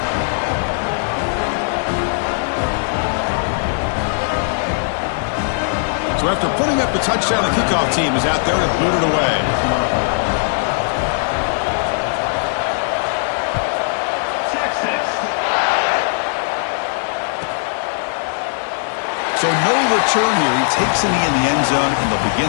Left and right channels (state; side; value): silent; right; digital silence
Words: So after putting up the touchdown, the kickoff team is out there to boot it away. So no return here. He takes a knee in the end zone, and they'll